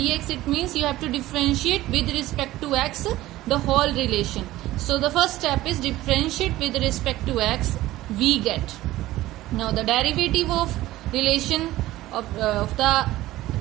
It means you have to differentiate with respect to x the whole relation. So the first step is differentiate with respect to x. We get. Now the derivative of relation of the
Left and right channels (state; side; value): quieter; left; 16.4 dB